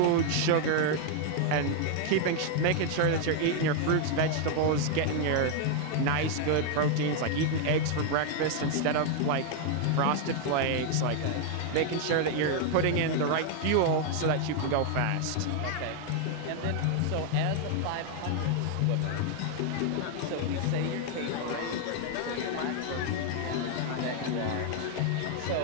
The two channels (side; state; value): both; different; correlation 0.00